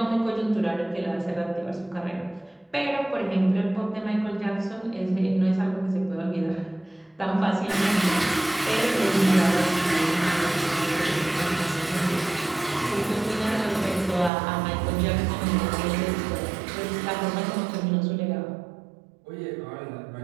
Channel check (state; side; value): drops out; left; at 14.3 s